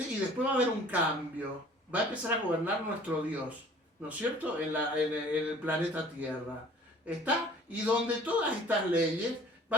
Y después va a haber un cambio, va a empezar a gobernar nuestro Dios, ¿no es cierto?, en el planeta Tierra. ¿Está? Y donde todas estas leyes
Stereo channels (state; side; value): normal; both; correlation 0.50